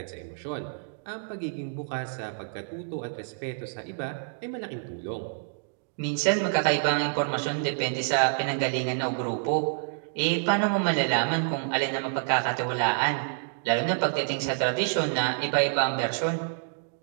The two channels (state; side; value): silent; left; digital silence